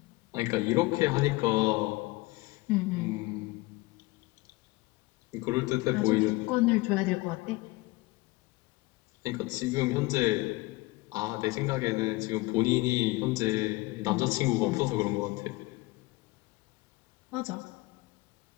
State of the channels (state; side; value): quieter; right; 22.0 dB